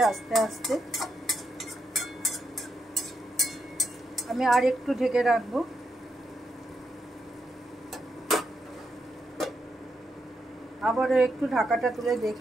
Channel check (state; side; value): normal; both; correlation 0.82